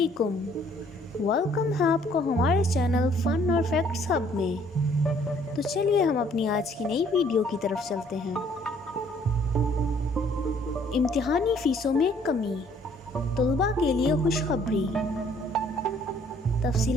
ویلکم ہے آپ کو ہمارے چینل فن اور فیکٹس ہب میں۔ تو چلیے ہم اپنی آج کی نئی ویڈیو کی طرف چلتے ہیں۔ امتحانی فیسوں میں کمی، طلباء کے لیے خوشخبری۔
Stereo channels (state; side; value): normal; both; correlation 0.61